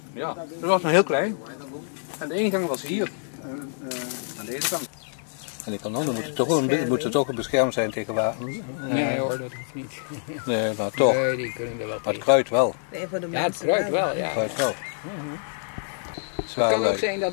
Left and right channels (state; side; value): silent; right; 61 dB below the other